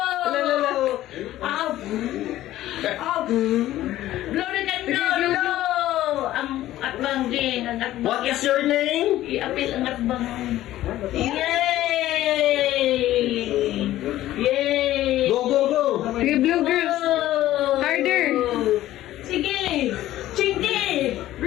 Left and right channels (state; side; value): quieter; right; 14.4 dB